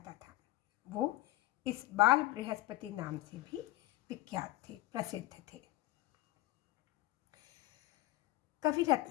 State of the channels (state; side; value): quieter; right; 17.0 dB